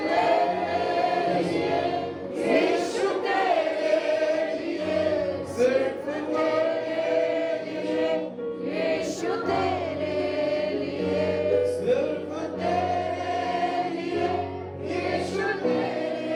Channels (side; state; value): both; identical; correlation 1.00